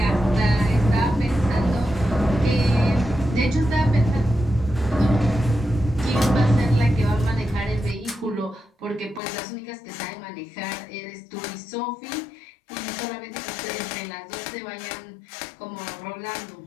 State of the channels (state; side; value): drops out; right; at 9.2 s